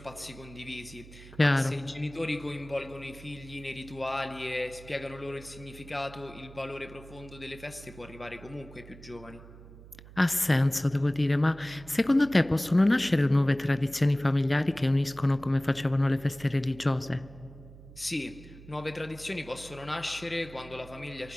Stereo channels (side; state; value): right; noise; hum, 18 dB below the sound